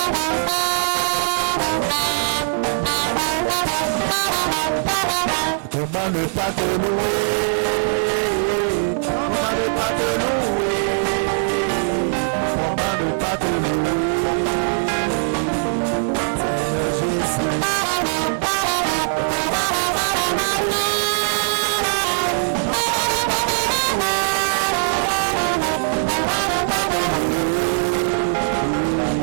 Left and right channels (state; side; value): silent; left; digital silence